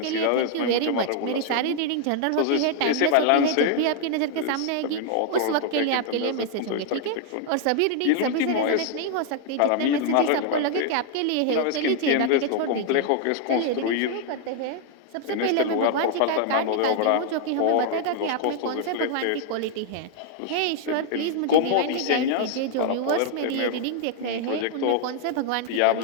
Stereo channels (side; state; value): both; different; correlation 0.00